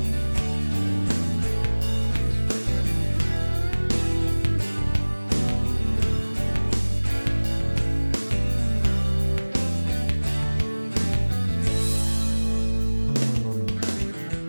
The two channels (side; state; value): both; inverted; correlation -1.00